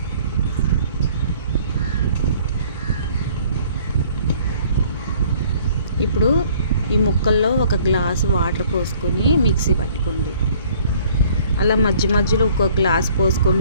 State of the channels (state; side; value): inverted; both; correlation -0.56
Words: ఇప్పుడు ఈ ముక్కల్లో ఒక గ్లాసు వాటర్ పోసుకొని మిక్సీ పట్టుకోండి. అలా మధ్య మధ్యలో ఒక్కొక్క గ్లాస్